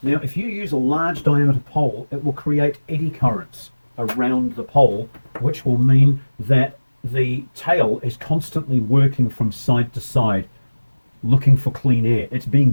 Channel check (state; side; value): inverted; both; correlation -1.00